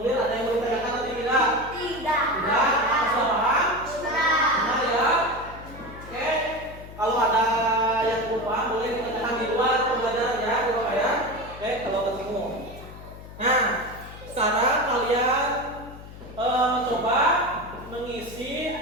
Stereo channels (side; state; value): left; noise; hum, 15 dB below the sound